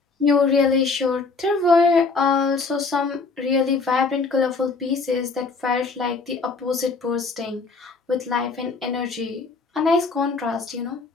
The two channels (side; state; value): right; quieter; 4.2 dB